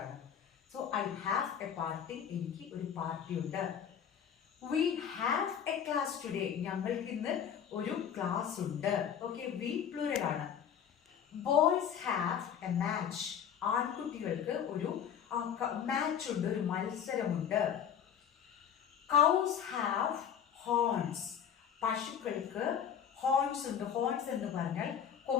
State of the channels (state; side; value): quieter; right; 8.5 dB